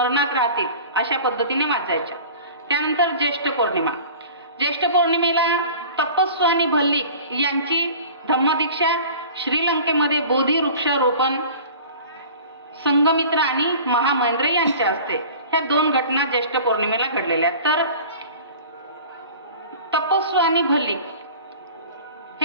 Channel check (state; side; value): inverted; both; correlation -0.42